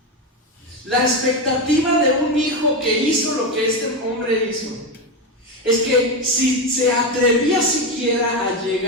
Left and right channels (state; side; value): normal; both; correlation 0.14